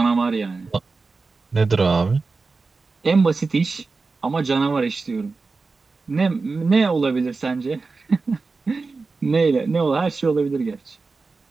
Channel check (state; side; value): quieter; left; 4.1 dB